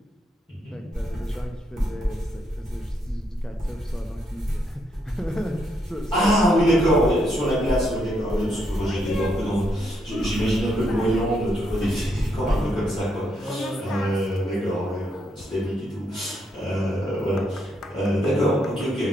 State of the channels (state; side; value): normal; both; correlation 0.77